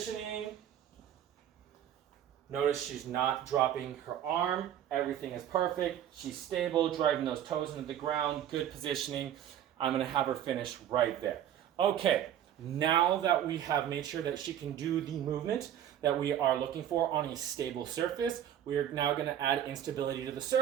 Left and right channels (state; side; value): quieter; left; 10.5 dB